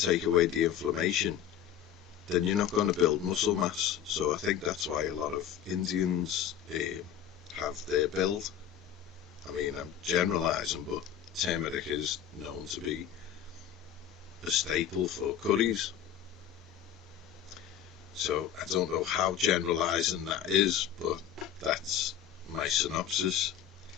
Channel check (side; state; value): right; quieter; 9.6 dB